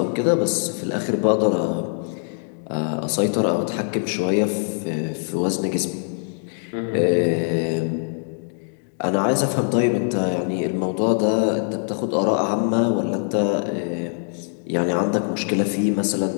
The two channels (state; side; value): silent; right; 62 dB below the other